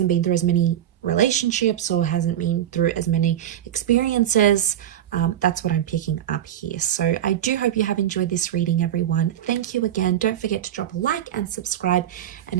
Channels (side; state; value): left; quieter; 11.2 dB